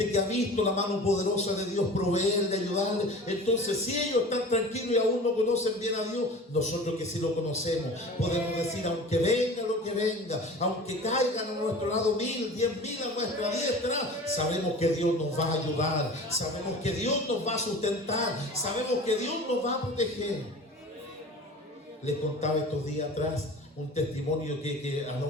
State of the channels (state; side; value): normal; both; correlation 0.38